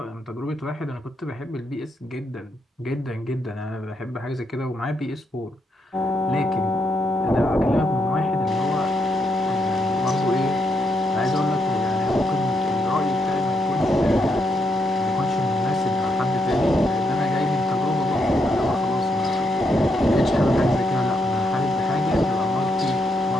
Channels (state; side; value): normal; both; correlation 0.79